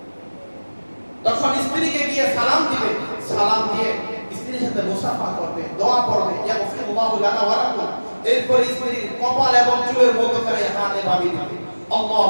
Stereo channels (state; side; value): inverted; both; correlation -1.00